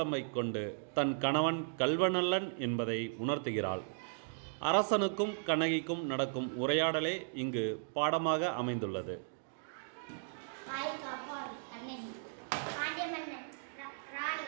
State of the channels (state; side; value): silent; left; digital silence